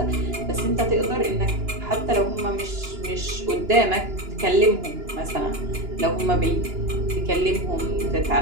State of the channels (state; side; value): late; left; 2.9 ms